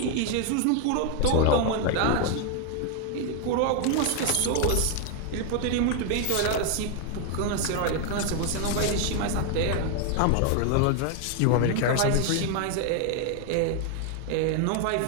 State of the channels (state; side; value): different; both; correlation 0.01